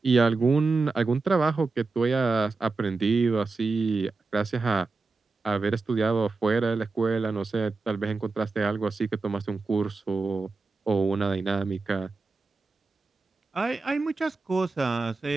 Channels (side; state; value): left; quieter; 3.9 dB